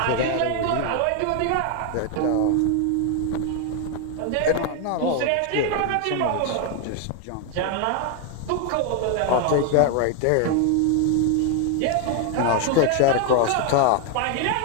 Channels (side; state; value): both; different; correlation 0.00